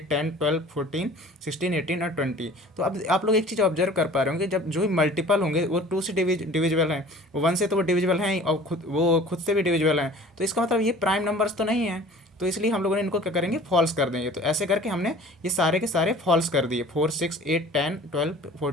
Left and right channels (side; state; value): both; normal; correlation 0.46